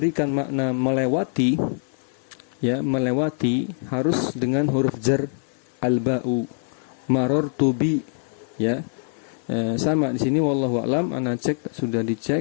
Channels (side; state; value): right; silent; 60 dB below the other